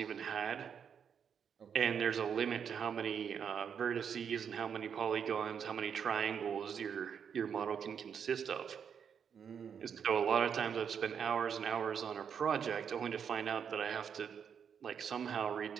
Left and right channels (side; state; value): left; quieter; 7.4 dB